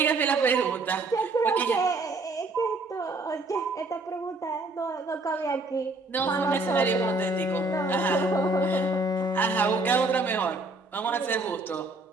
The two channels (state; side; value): quieter; left; 3.1 dB